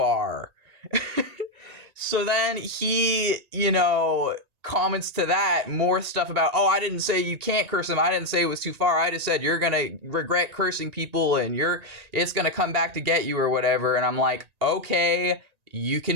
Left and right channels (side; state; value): left; late; 1.8 ms